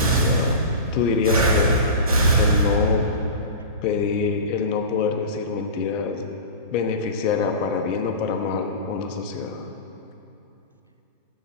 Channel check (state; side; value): inverted; both; correlation -0.30